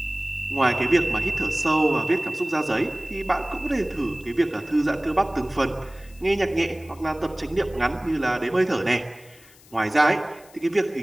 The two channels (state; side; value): noise; left; hiss, 25 dB below the sound